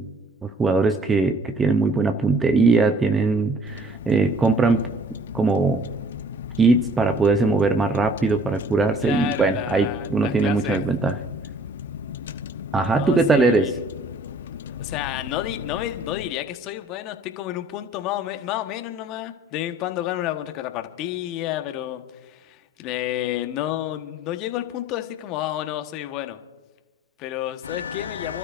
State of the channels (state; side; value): normal; both; correlation 0.54